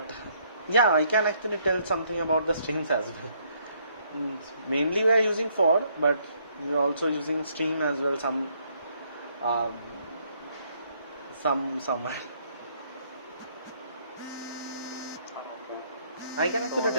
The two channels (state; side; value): inverted; both; correlation -0.69